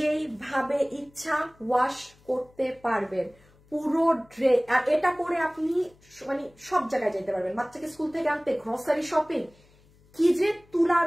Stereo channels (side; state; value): left; noise; hum, 30 dB below the sound